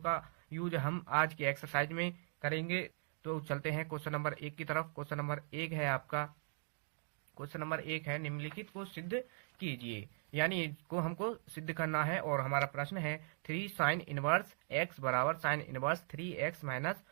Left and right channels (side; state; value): left; silent; 51 dB below the other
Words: यूज हम आज की एक्सरसाइज में करेंगे। तो चलते हैं क्वेश्चन नंबर 1 की तरफ। क्वेश्चन नंबर 1 है आपका, क्वेश्चन नंबर 1 है निम्नलिखित को सिद्ध कीजिए, यानी इसको हमको सिद्ध करना है। और हमारा प्रश्न है 3 साइन इनवर्स एक्स बराबर sine inverse 3x minus